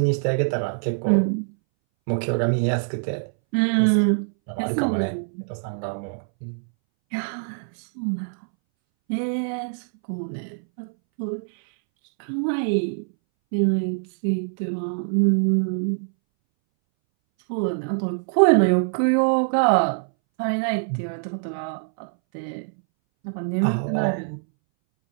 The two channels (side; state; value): left; silent; 62 dB below the other